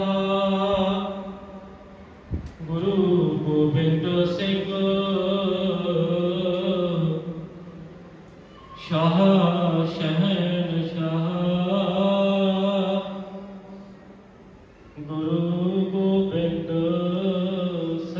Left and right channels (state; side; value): identical; both; correlation 1.00